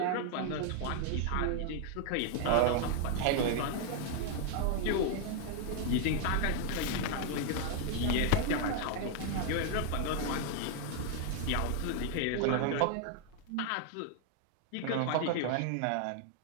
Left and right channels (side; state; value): both; different; correlation 0.00